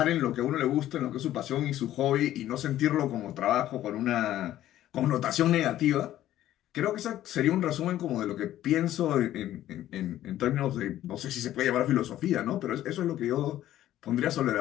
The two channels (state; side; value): quieter; right; 13.1 dB